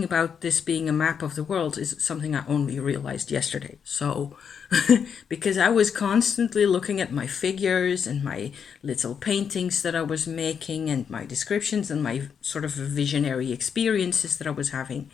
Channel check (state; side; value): quieter; right; 7.1 dB